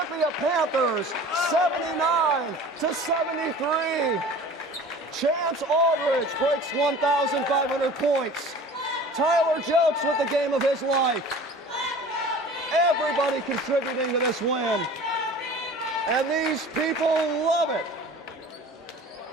Panthers 79-73. Chance Aldridge breaks 1,500 points. Tyler Jelks with the game of his life. Everybody contributing to this win. And these people love it.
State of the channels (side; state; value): both; normal; correlation 0.42